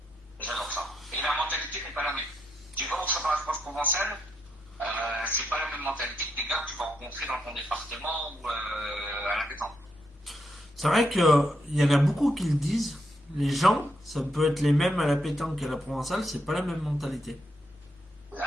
J'adore ça. Et la mentalité n'est pas la même. Tu vas au championnat de France provençal, c'est pas la même mentalité que des gars que tu vas rencontrer dans ton département ou à la pétanque. C'est vrai qu'il y en a beaucoup qui le disent. Les gens, ça peut être les mêmes à la pétanque qu'à la provençale, c'est pas la même mentalité. Ça n'a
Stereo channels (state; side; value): normal; both; correlation 0.80